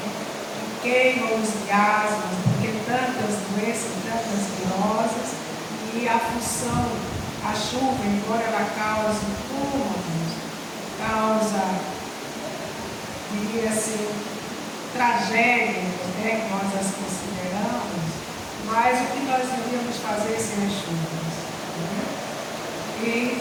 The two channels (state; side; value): identical; both; correlation 1.00